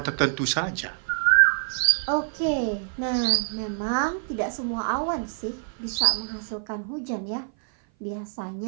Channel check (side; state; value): left; silent; 56 dB below the other